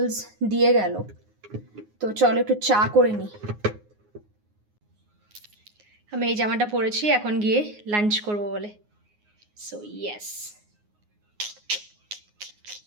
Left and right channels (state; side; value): late; left; 9.6 ms